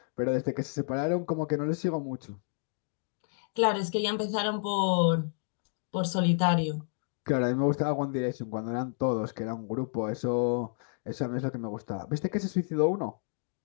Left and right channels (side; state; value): right; silent; digital silence